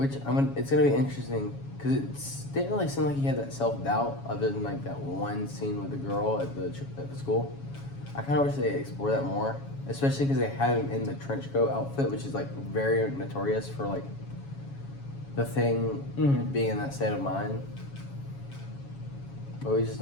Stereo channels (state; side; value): late; right; 7.2 ms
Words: it's gonna be interesting because it didn't really seem like he had that self doubt other than like that one scene with the girl at the school. I kind of wish they explored that more, especially because they have him in the trench coat outfit, which is like very notorious for like the Thing being in that state of mind. But we just